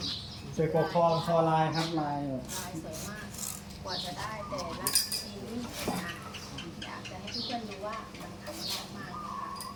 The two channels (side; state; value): both; identical; correlation 1.00